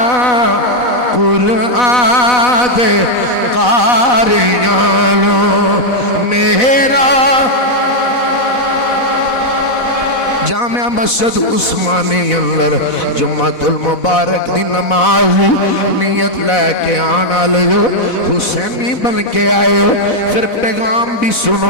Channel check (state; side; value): late; right; 4.1 ms